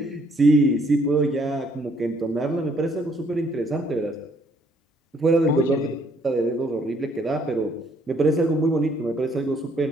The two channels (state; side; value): normal; both; correlation 0.66